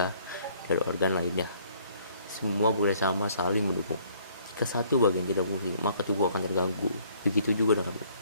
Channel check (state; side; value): inverted; both; correlation -0.61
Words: dan organ lainnya. Semua bekerja sama saling mendukung. Jika satu bagian tidak fungsi, maka tubuh akan terganggu. Begitu juga